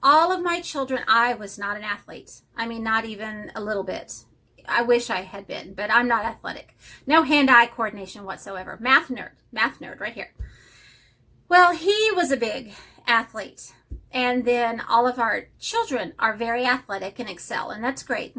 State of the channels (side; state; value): both; identical; correlation 1.00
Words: All of my children, I was not an athlete. I mean, not even a little bit. I wish I had been, but I'm not athletic. No hand-eye coordination whatsoever. Math nerd right here. Well, he was a big athlete. And then all of our children are very athletic and excel, and that's great